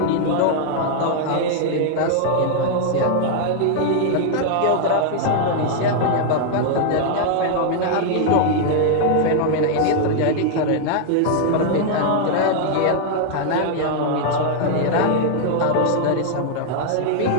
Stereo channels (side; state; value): both; different; correlation 0.00